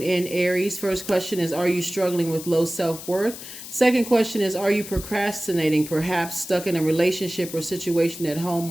in Aries. First question is, are you struggling with low self-worth? Second question is, are you procrastinating, perhaps stuck in a relationship or situation at home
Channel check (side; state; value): left; noise; hiss, 12 dB below the sound